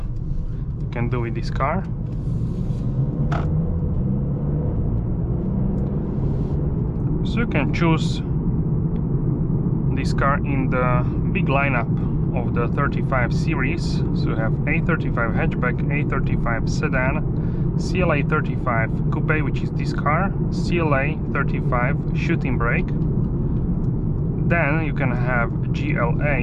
you can do with this car. So you can choose this car in the big lineup of the 35 series. So you have A35 hatchback, A35 sedan, CLA35 Coupe, which is this car, CLA35 shooting brake. Then you can have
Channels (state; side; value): identical; both; correlation 1.00